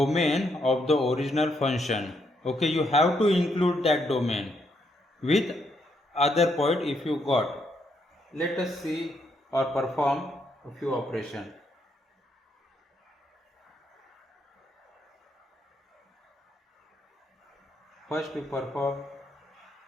of the original function. Okay, you have to include that domain with other point if you got. Let us see or perform a few operations. First we perform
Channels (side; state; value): both; normal; correlation 0.76